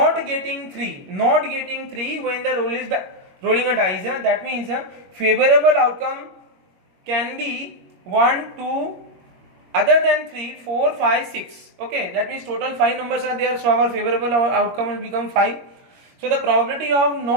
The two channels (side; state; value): left; late; 21 ms